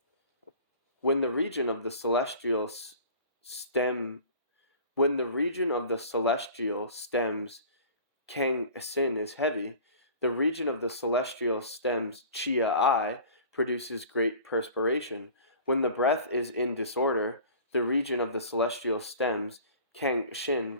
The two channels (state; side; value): inverted; both; correlation -0.43